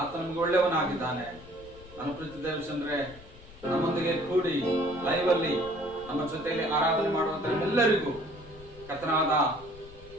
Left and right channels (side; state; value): left; noise; rumble, 19 dB below the sound